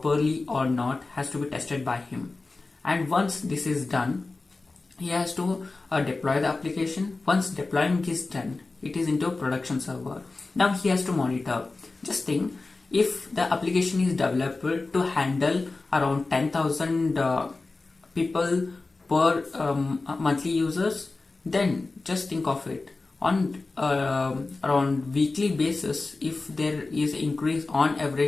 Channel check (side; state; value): right; quieter; 3.5 dB